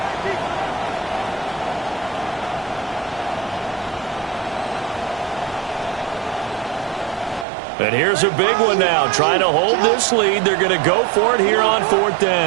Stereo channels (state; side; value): drops out; left; at 7.5 s